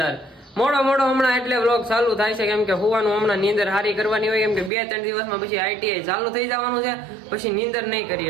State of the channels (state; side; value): drops out; left; at 4.7 s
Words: મોડો હમણાં એટલે વ્લોગ ચાલુ થાય છે, કેમ કે હોવાનું હમણાં નીંદર હારી કરવાની હોય, કેમ કે 2-3 દિવસમાં પછી આઈટીઆઈ ચાલુ થઈ જવાનું છે, પછી નીંદર નહીં